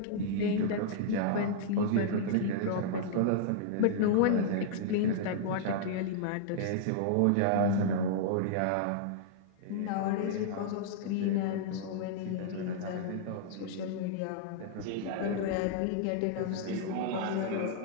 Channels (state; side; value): different; both; correlation -0.01